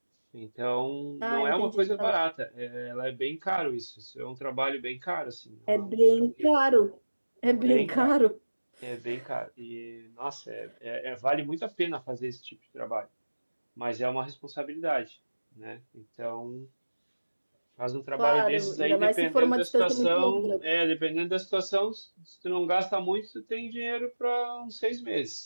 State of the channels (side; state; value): both; inverted; correlation -1.00